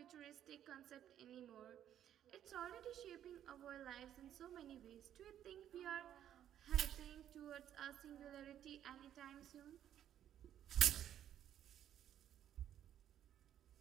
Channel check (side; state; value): left; quieter; 10.7 dB